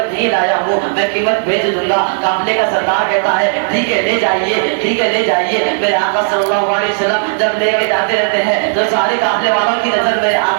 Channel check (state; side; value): silent; left; digital silence